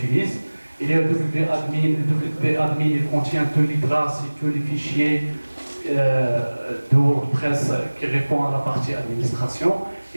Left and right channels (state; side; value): inverted; both; correlation -1.00